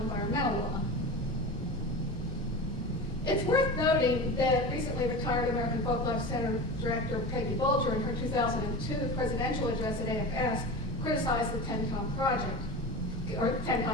environmental law? It's worth noting that recently retired American Folklife Center Director Peggy Bulger, in her 2002 presidential address at AFS, criticized the TENCOM project, or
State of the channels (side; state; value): both; normal; correlation 0.29